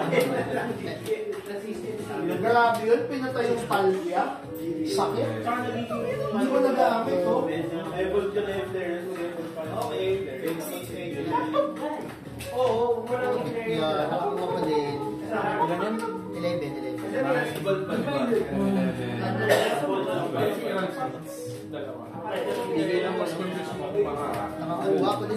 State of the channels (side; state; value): both; identical; correlation 1.00